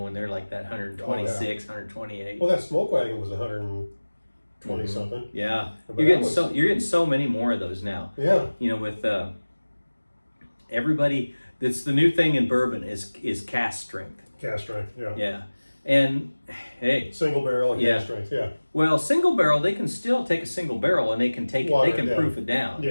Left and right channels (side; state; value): both; inverted; correlation -1.00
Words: they're like that 126, 128. Well, that smoke wagon was 120 something. Yeah, But you're that getting so many more of those now. Yeah. With everybody, that's the new thing in bourbon is cask strength. Cast strength. Yeah. Yeah, and hey, Single barrel and Yeah. cast strength. Yeah. well, single barrel, they can still take a single barrel and they can Water they can it down. proof it down.